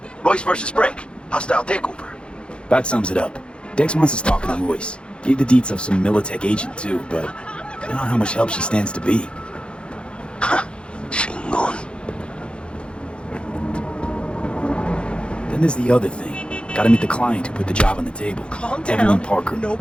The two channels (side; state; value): right; late; 0.056 ms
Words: Royce versus Break. Hostile takeover. That sums it up. Dex wants us talking to Royce. Gave the deets of some Militech agent too, but I don't know how much help she stands to be. Chingon. Then there's the other thing. Gotta meet the client who put the job on the table. Calm down. Evelyn Parker.